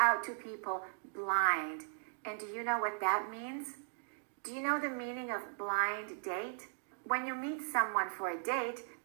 to people blind. And do you know what that means? Do you know the meaning of blind date? When you meet someone for a date,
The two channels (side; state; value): left; silent; digital silence